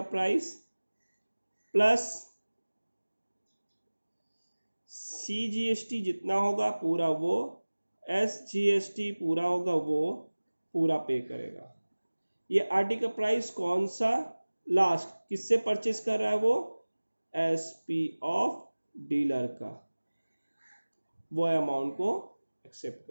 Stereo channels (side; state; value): both; inverted; correlation -1.00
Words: प्राइस प्लस CGST जितना होगा पूरा वो, SGST पूरा होगा वो पूरा पे करेगा। ये आर्टिकल प्राइस कौन सा? लास्ट किससे परचेस कर रहा है वो? SP ऑफ डीलर का, वो अमाउंट को एक्सेप्ट